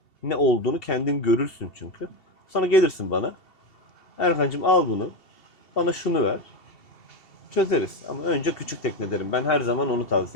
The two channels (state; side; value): late; right; 2.7 ms